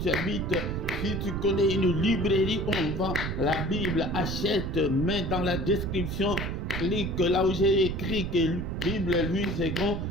habites. Si tu connais une librairie où on vend la Bible, achète, mets dans la description, clique là où j'ai écrit que Bible Louis II,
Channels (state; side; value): noise; right; rumble, 4 dB below the sound